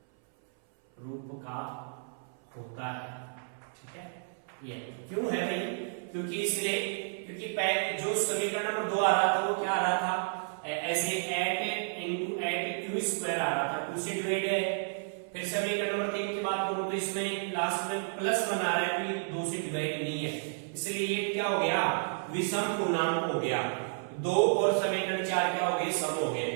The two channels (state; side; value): silent; left; 57 dB below the other